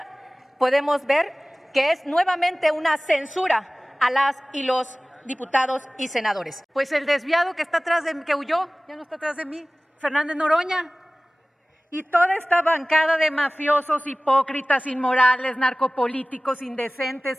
podemos ver que es nuevamente una censura a las y los diputados y senadores. Pues el desviado que está atrás de mí, que huyó, ya no está atrás de mí, Fernández Noroña. Y toda esta bancada de mafiosos, hipócritas, inmorales, narcopolíticos,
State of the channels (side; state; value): both; normal; correlation 0.98